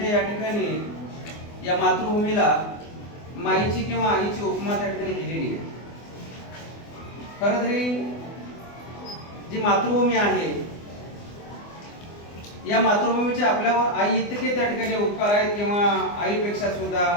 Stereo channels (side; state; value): right; late; 24 ms